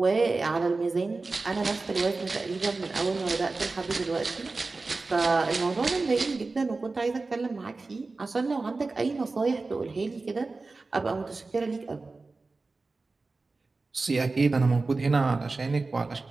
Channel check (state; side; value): quieter; left; 3.7 dB